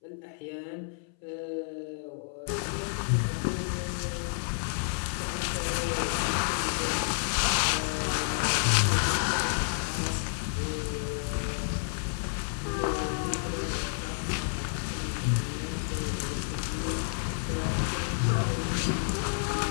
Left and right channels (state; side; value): silent; right; 58 dB below the other